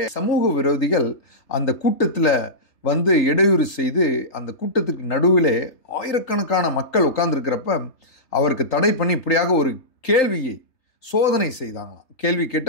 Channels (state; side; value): late; right; 3.3 ms